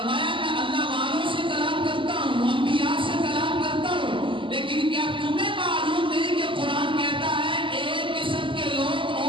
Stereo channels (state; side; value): late; left; 0.25 ms